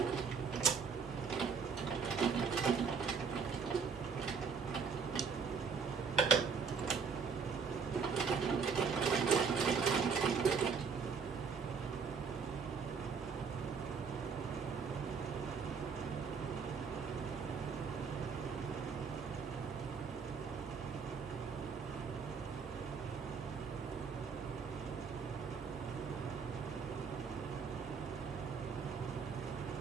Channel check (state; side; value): quieter; left; 5.8 dB